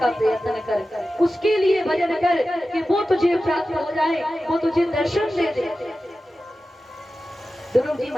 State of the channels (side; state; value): both; normal; correlation 0.94